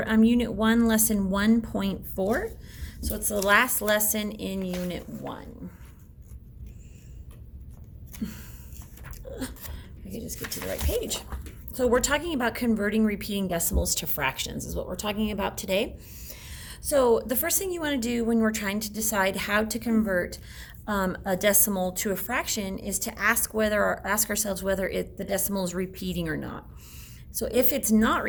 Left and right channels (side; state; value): both; identical; correlation 1.00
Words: Unit 1, Lesson 1.4. So it's the last lesson in Unit 1. I can just get to the right page. So we're talking about converting repeating decimals to fractions is what we're talking about today. So the first thing you want to do when we're trying to decide how to convert a decimal to a fraction is to ask ourselves whether the decimal is repeating or not. So if it's not